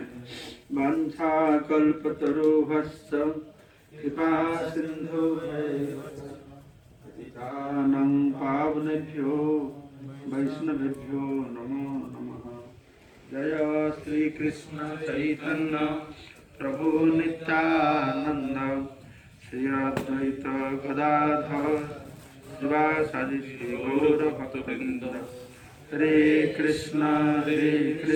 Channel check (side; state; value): both; identical; correlation 1.00